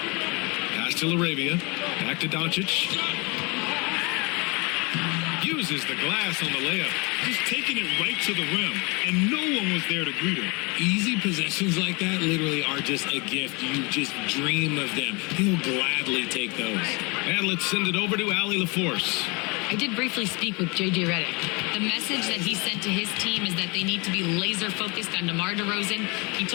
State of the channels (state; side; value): quieter; right; 28.8 dB